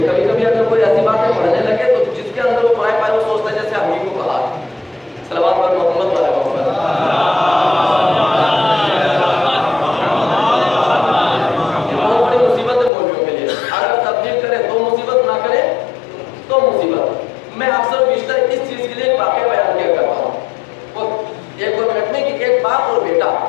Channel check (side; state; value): right; drops out; at 12.9 s